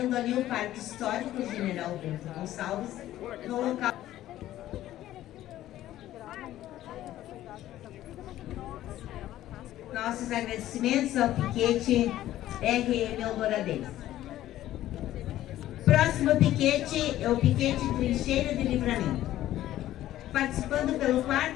ali o Parque Histórico General Bento Gonçalves, no local. Nossos agradecimentos ao piquete RM Eldoradense. Próximo piquete é o piquete Trincheira de Livramento. Participando pelo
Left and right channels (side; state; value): right; quieter; 13.8 dB